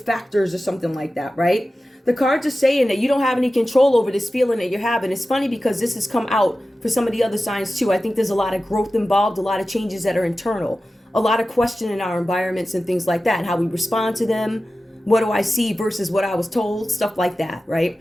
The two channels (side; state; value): both; normal; correlation 0.94